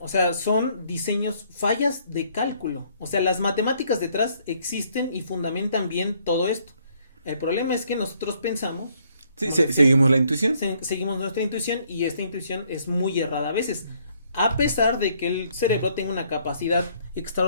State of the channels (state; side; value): inverted; both; correlation -0.66